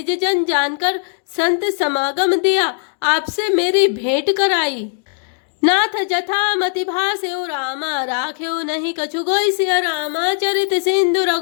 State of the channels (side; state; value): right; silent; 67 dB below the other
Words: जन जानकर संत समागम दिया, आपसे मेरी भेंट कराई। नाथ जथा मति भास्यो रामा राख्यो नहीं कछु गोई सिया रामा चरित सिंधु